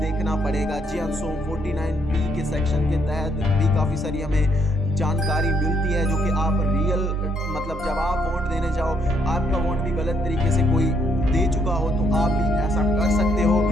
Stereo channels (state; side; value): normal; both; correlation 0.72